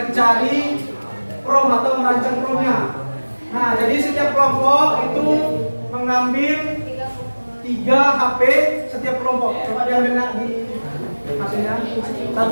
prom atau merancang promnya. Nah, jadi setiap kelompok itu mengambil 3 HP setiap kelompok. Coba diambil nak di hasilnya.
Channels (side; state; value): both; inverted; correlation -1.00